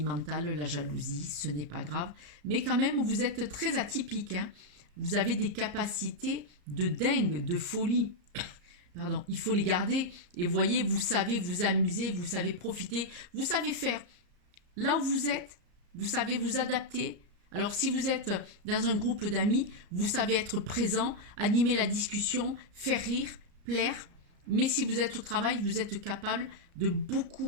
la jalousie, ce n'est pas grave. Mais quand même, vous êtes très atypique. Hein. Vous avez des capacités de dingue, de folie. Pardon, il faut les garder. Et voyez, vous savez vous amuser, vous savez profiter, vous savez faire. Là où vous êtes, vous savez vous adapter. Alors si vous êtes dans un groupe d'amis, vous savez être présent, animer la discussion, faire rire, plaire. Mais si vous êtes au travail, vous êtes capable de beaucoup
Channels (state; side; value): late; left; 34 ms